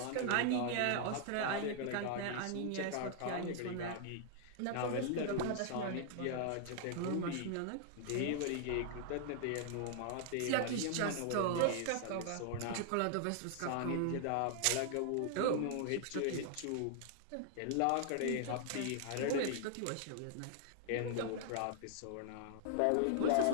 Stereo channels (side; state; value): both; different; correlation -0.01